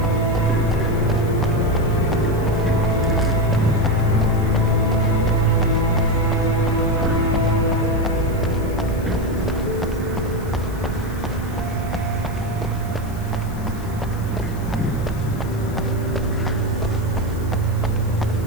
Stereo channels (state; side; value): noise; left; hiss, 21 dB below the sound